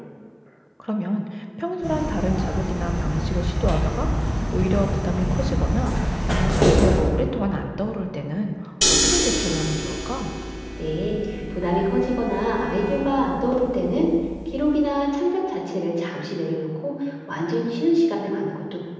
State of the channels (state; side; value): identical; both; correlation 1.00